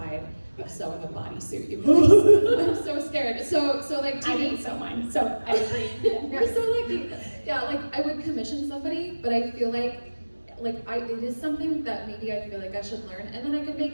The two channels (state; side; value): inverted; both; correlation -1.00